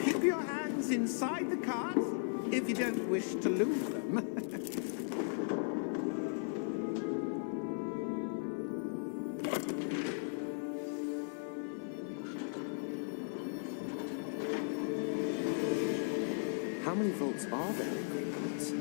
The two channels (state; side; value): silent; right; 53 dB below the other